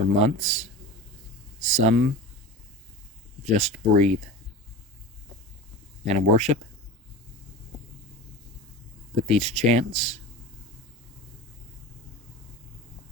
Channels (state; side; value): normal; both; correlation 0.32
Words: months. Some just breathe and worship with these chants,